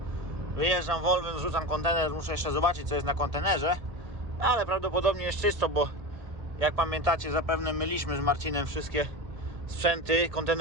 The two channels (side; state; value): left; late; 1.7 ms